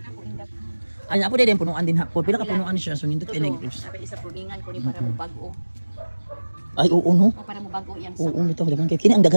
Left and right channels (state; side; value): inverted; both; correlation -1.00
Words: indak. Ay, ako din punuan din hapon. Pila ka punuan siya so nindot kay grapes. Sabi isa pulingan ko ni para mo bag-o. Ay, oo no. O para mo bag-o yang Oo, nito daghan kay kini ang